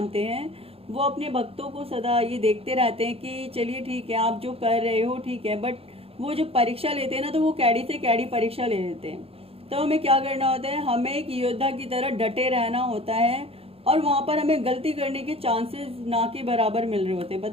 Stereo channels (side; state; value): left; late; 0.28 ms